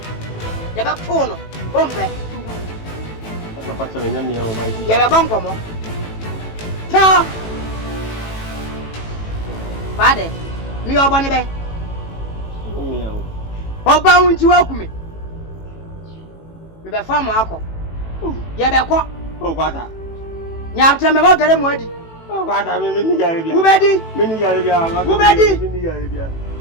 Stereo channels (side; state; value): right; late; 18 ms